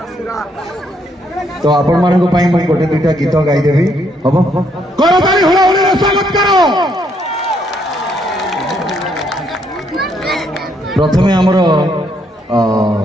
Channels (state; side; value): normal; both; correlation 0.72